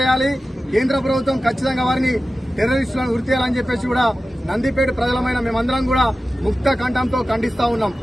కేంద్ర ప్రభుత్వం ఖచ్చితంగా వారిని టెర్రరిస్టులను ఉరి తీయాలని చెప్పేసి కూడా నందిపేట ప్రజలమైన మేమందరం కూడా ముక్త కంఠంతో ఖండిస్తా ఉన్నాం.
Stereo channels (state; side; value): normal; both; correlation 0.94